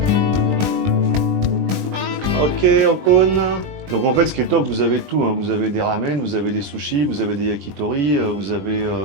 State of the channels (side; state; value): left; late; 20 ms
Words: Ok, Okon. Donc en fait, ce qui est top, vous avez tout. Hein. Vous avez des ramen, vous avez des sushis, vous avez des yakitori, vous avez